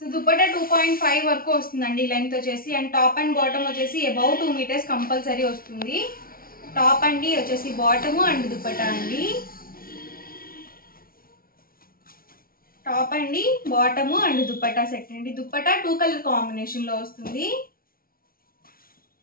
దుపట్టా 2.5 వరకు వస్తుందండి లెంత్ వచ్చేసి. అండ్ టాప్ అండ్ బాటమ్ వచ్చేసి అబౌవ్ 2 మీటర్స్ కంపల్సరీ వస్తుంది. టాప్ అండి, వచ్చేసి బాటమ్ అండ్ దుపట్టా అండి. టాప్ అండి, బాటమ్ అండ్ దుపట్టా సెట్ అండి. దుపట్టా 2 కలర్ కాంబినేషన్లో వస్తుంది.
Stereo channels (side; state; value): right; late; 0.43 ms